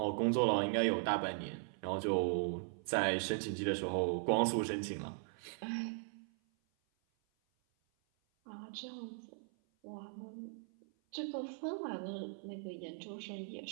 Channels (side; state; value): left; silent; 52 dB below the other